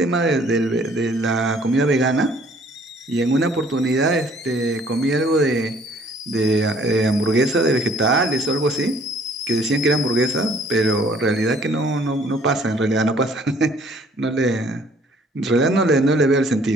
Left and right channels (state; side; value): normal; both; correlation 0.59